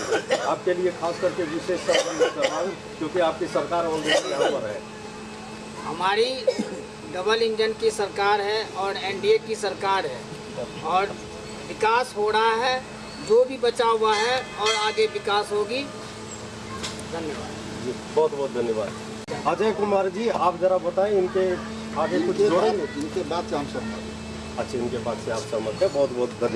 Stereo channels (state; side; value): identical; both; correlation 1.00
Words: आपके लिए खास करके विशेष क्योंकि आपकी सरकार ऑलरेडी यहाँ पर है। हमारी डबल इंजन की सरकार है और एनडीए की सरकार है, और विकास हो रहा है, जो भी बचा हुआ है, और आगे विकास होगी। धन्यवाद जी, बहुत बहुत धन्यवाद। अजय कुमार जी, आप जरा बताएं, इनके आगे कुछ जोड़ेंगे? इनके बाद से हम सहमत। अच्छा, इनके बाद से आप सहमत हैं। बहुत बहुत